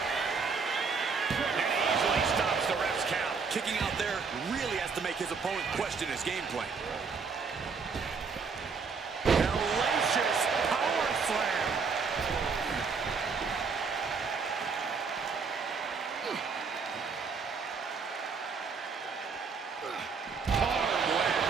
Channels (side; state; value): left; quieter; 5.2 dB